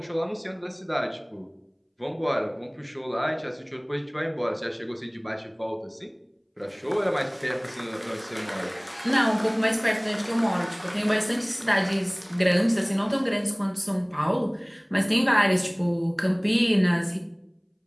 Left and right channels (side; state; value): both; identical; correlation 1.00